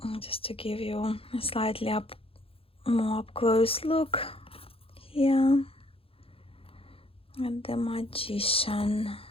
Just to give you a slightly more up close look here at the magician.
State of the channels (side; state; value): right; late; 0.27 ms